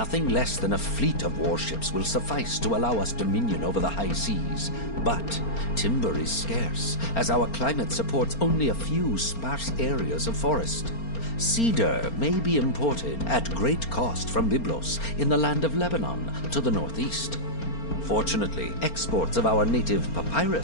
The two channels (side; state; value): right; late; 4.4 ms